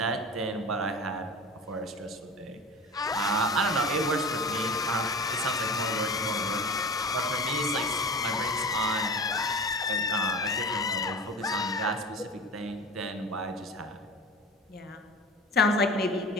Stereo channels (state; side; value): normal; both; correlation 0.34